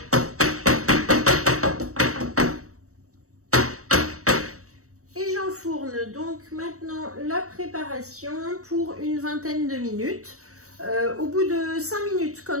Et j'enfourne donc maintenant la préparation pour une vingtaine de minutes. Au bout de 5 minutes,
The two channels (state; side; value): late; left; 0.65 ms